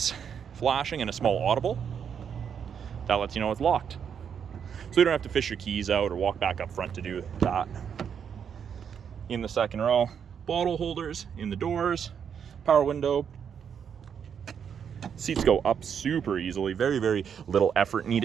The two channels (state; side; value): quieter; left; 7.6 dB